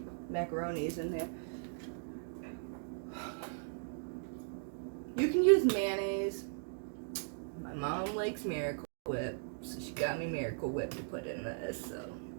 macaroni is in there. You can use mayonnaise. My mom likes Miracle Whip, so she got me Miracle Whip to put in this. So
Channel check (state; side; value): silent; left; digital silence